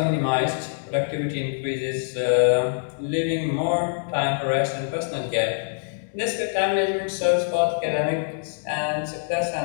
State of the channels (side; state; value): right; silent; digital silence